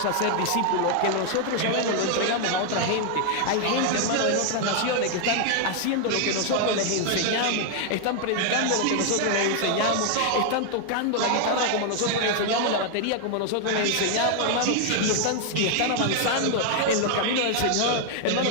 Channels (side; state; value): both; different; correlation 0.00